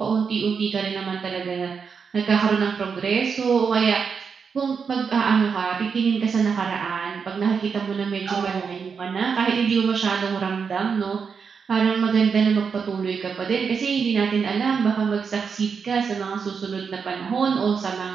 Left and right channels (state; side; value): quieter; left; 5.9 dB